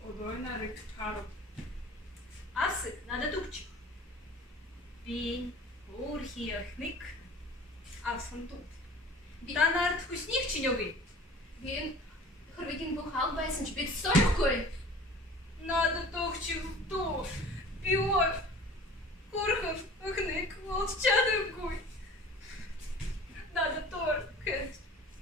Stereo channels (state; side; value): normal; both; correlation 0.44